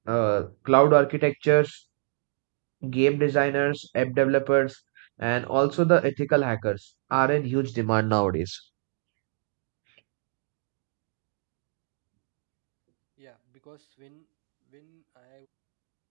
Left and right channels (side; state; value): left; silent; digital silence